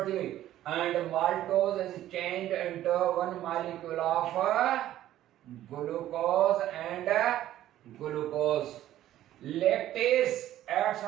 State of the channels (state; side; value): quieter; left; 13.2 dB